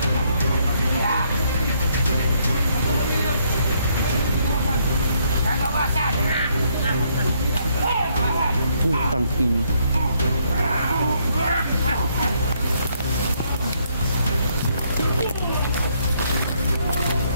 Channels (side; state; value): both; inverted; correlation -0.71